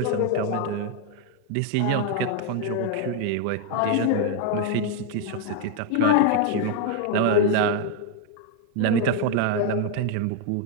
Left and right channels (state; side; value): different; both; correlation 0.01